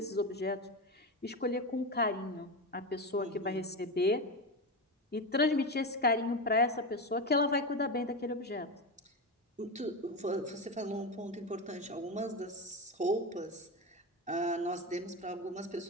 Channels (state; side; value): normal; both; correlation 0.17